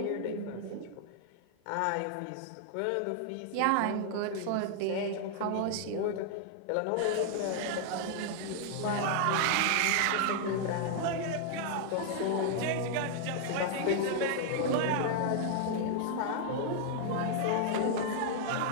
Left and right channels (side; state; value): both; different; correlation 0.00